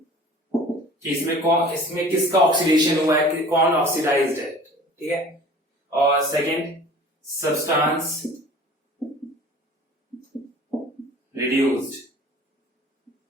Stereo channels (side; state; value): both; normal; correlation 0.45